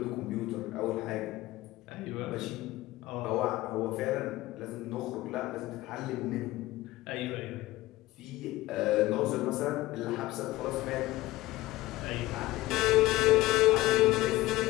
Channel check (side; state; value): right; quieter; 17.8 dB